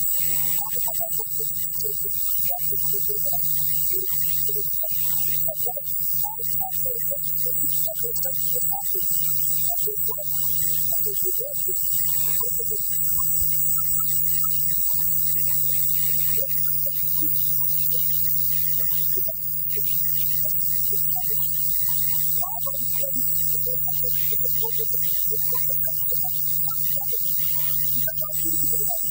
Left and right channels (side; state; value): both; identical; correlation 1.00